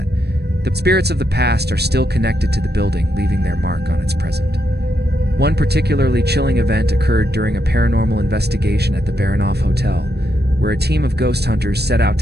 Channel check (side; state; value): left; late; 0.47 ms